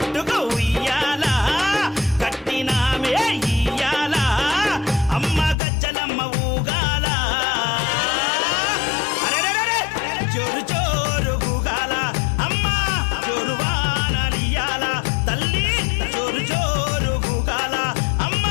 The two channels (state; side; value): drops out; right; at 5.6 s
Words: ఉయ్యాల కట్టినామే ఇయ్యాల అమ్మ గజ్జలమ్మ ఊగాల అరెరెరెరె జోరు జోరు గుగాల అమ్మ జోరు వానలియాల తల్లి జోరు జోరు గుగాల అమ్మ